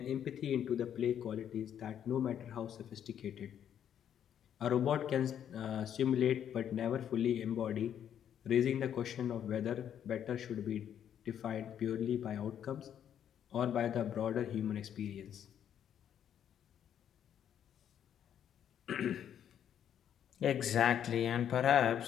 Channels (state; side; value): quieter; right; 9.5 dB